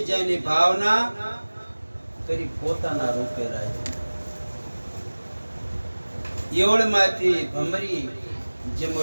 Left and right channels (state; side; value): inverted; both; correlation -1.00